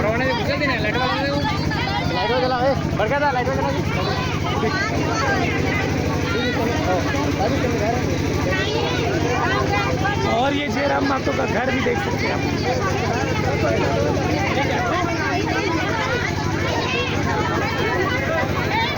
और ये जयराम महतो का घर भी देख सकते हैं आप।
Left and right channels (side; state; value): left; noise; rumble, 19 dB below the sound